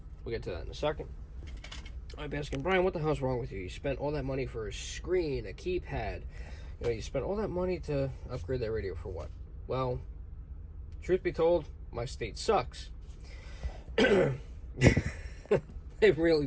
We'll get to that in a second. I'm asking, Brian, what the hell's wrong with you? You spent all that money for a screen, a keypad. You spent all that money to upgrade that radio for what? Well, truth be told, my state sucks. It really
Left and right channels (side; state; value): both; identical; correlation 1.00